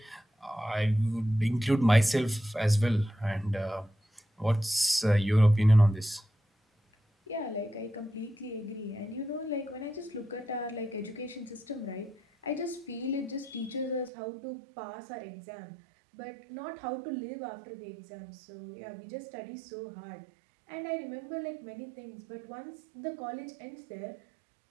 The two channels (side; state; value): left; drops out; at 14.1 s